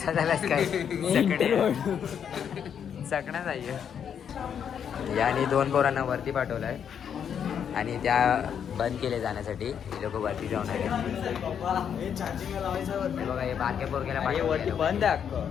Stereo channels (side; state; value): right; quieter; 8.1 dB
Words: झालास काय? चकणा जाईल. याने 2 पोरांना वरती पाठवलाय आणि त्या बंद केले जाण्यासाठी. हे लोक वरती जाऊन आले. हे बघा हे बारक्या पोरग्याला वरती बंद आहे